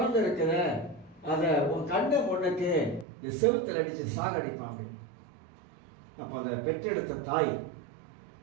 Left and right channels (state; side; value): drops out; left; at 3.1 s